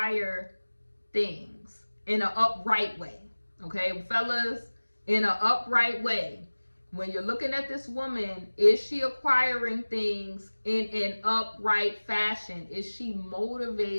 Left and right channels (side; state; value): both; inverted; correlation -1.00